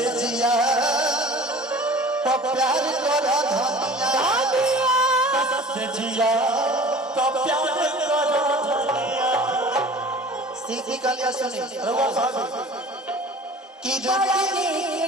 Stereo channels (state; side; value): normal; both; correlation 0.43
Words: जिया तो प्यार कर धनिया जिया तो प्यार करो धनिया। सीखी कलिया सुनी रघुआ साहब कि जो